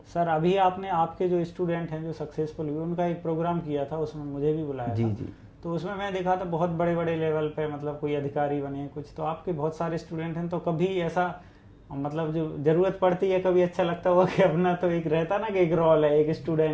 सर अभी आपने आपके जो स्टूडेंट हैं जो सक्सेसफुल हुए उनका एक प्रोग्राम किया था, उसमें मुझे भी बुलाया जी था। जी। तो उसमें मैं देखा था बहुत बड़े बड़े लेवल पे मतलब कोई अधिकारी बने कुछ, तो आपके बहुत सारे स्टूडेंट हैं, तो कभी ऐसा मतलब जो ज़रूरत पड़ती है कभी ऐसा लगता हुआ कि अपना तो एक रहता ना कि एक रोल है, एक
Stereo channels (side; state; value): both; identical; correlation 1.00